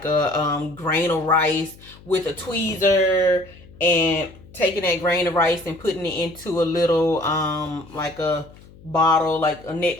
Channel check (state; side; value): noise; left; hum, 22 dB below the sound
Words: a grain of rice with a tweezer and taking that grain of rice and putting it into a little like a bottle, like a neck